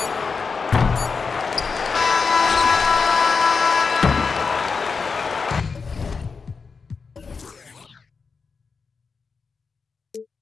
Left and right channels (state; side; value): quieter; right; 5.0 dB